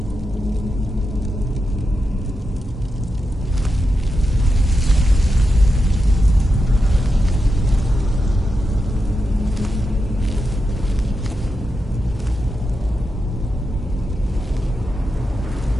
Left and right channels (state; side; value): normal; both; correlation 0.88